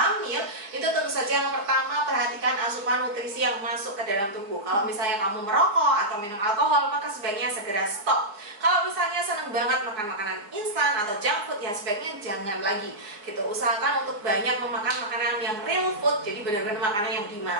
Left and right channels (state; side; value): late; left; 4.7 ms